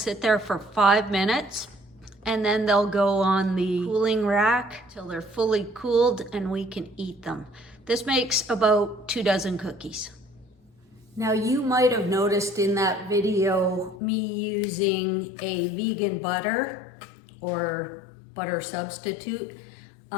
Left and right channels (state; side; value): drops out; right; at 14.0 s